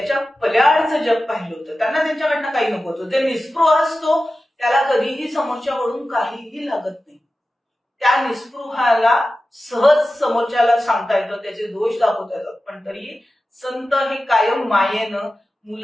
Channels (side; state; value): both; normal; correlation 0.94